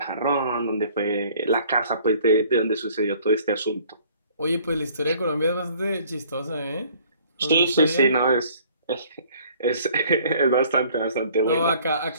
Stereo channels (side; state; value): both; inverted; correlation -0.56